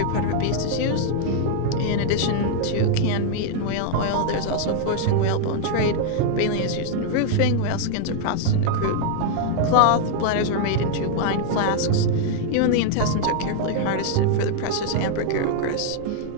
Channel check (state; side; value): different; both; correlation 0.00